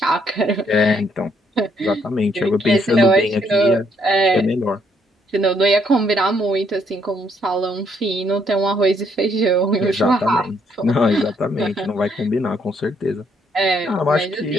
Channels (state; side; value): normal; both; correlation 0.70